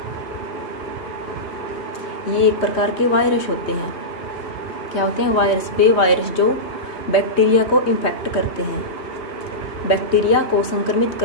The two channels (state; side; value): late; right; 3.1 ms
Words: ये एक प्रकार के वायरस होते हैं। क्या होते हैं? वायरस। वे वायरस जो बैक्टीरिया को इन्फेक्ट करते हैं। बैक्टीरिया को संक्रमित